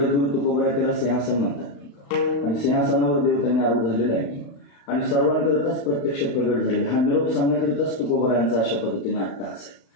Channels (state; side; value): late; right; 35 ms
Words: तुकोबराय त्याला सिंहासन म्हणतात आणि सिंहासनावर देव त्यांनी आरूढ झालेला आहे आणि सर्वांकरिताच प्रत्यक्ष प्रगट झालेला. हा निरोप सांगण्याकरिताच तुकोबरायांचा अशा पद्धतीने अट्टहास आहे.